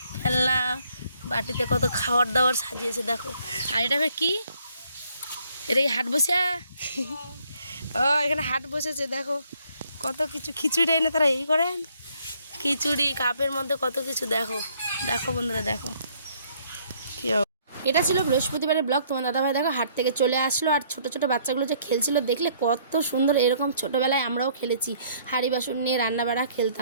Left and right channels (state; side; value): inverted; both; correlation -0.64